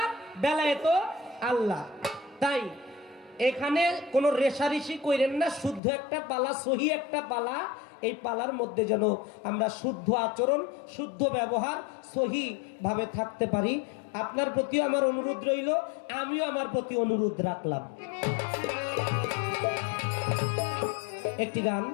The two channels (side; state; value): right; drops out; at 5.8 s